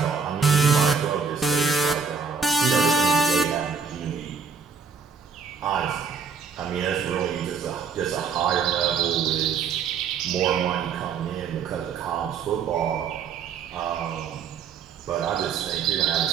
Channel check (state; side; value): quieter; left; 5.7 dB